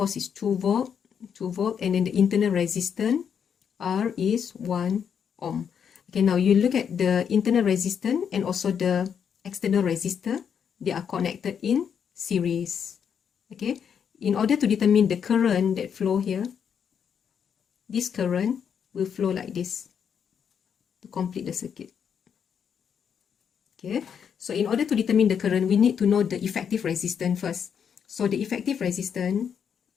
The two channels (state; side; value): quieter; right; 7.6 dB